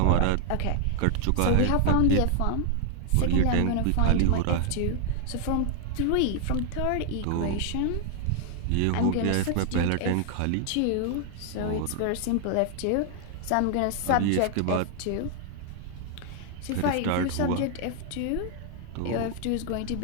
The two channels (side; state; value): both; different; correlation 0.00